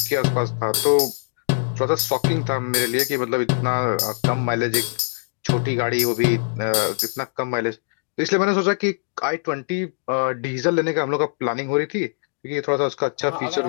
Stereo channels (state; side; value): silent; right; digital silence